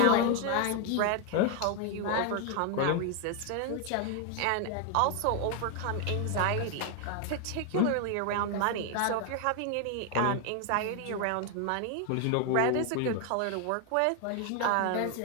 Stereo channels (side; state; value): both; different; correlation 0.01